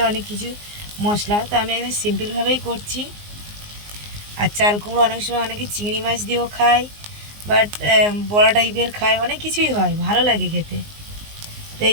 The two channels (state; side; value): late; left; 19 ms